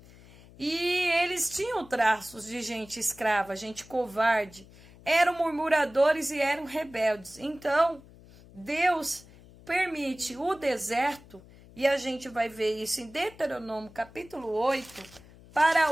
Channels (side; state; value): left; noise; hum, 22 dB below the sound